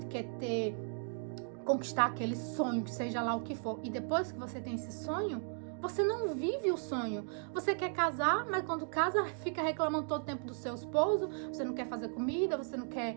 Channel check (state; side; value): silent; left; 54 dB below the other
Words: quer conquistar aquele sonho, que seja lá o que for. E depois que você tem esse sonho, você não vive o sonho. Você quer casar, mas quando casa, fica reclamando todo o tempo do seu esposo. Você não quer fazer comida, você não quer